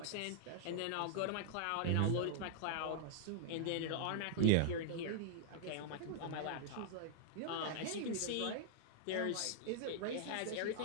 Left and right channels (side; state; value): both; different; correlation -0.01